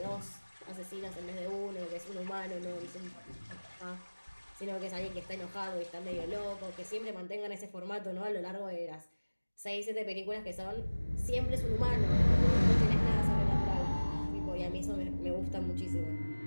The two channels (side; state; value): both; inverted; correlation -1.00